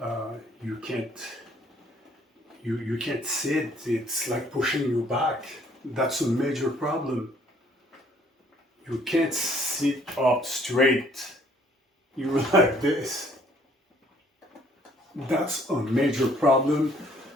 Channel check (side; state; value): both; normal; correlation 0.61